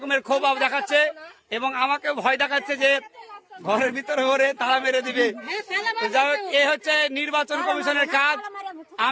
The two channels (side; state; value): both; identical; correlation 1.00